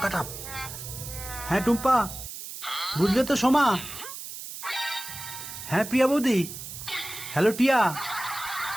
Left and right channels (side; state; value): right; noise; hiss, 10 dB below the sound